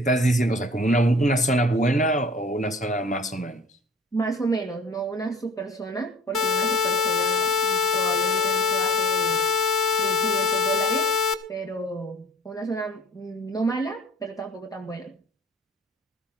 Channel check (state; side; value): normal; both; correlation 0.46